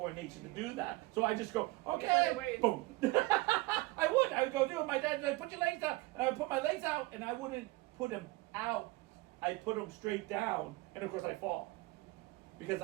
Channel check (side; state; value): left; quieter; 21.0 dB